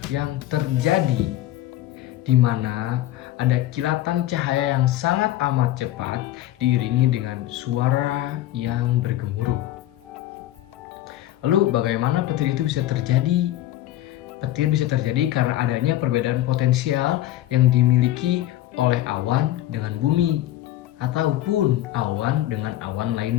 yang terjadi di mana ada kilatan cahaya yang sangat amat cepat diiringi dengan suara yang bergemuruh. Lalu bagaimana petir itu bisa terjadi? Petir bisa terjadi karena adanya perbedaan potensial yang dimiliki oleh awan dengan bumi ataupun awan dengan awan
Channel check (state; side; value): quieter; right; 14.0 dB